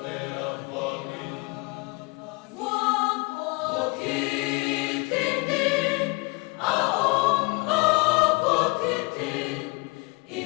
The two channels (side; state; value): right; quieter; 28.8 dB